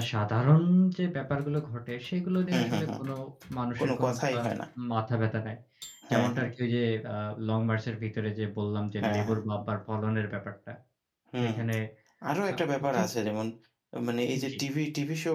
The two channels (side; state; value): both; identical; correlation 1.00